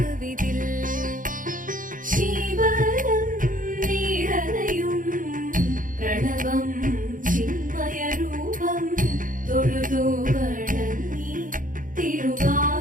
ശിവദം നിറയും പ്രണവം ചിന്മയരൂപം തൊഴുതു വണങ്ങി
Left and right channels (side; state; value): left; late; 0.39 ms